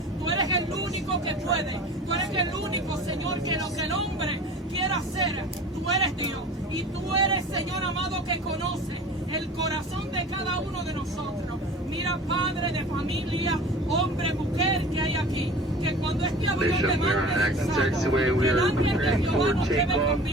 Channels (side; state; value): both; normal; correlation 0.40